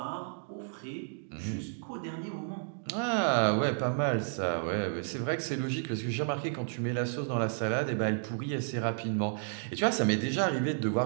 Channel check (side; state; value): left; silent; digital silence